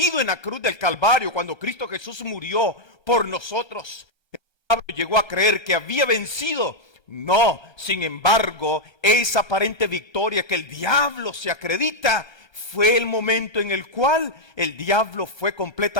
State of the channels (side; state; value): right; late; 1.3 ms